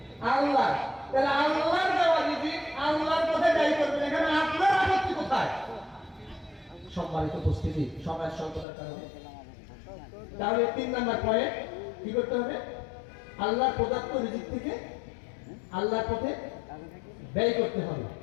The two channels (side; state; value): right; drops out; at 8.7 s